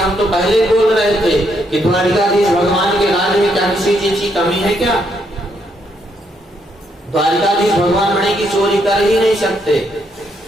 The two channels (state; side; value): normal; both; correlation 0.75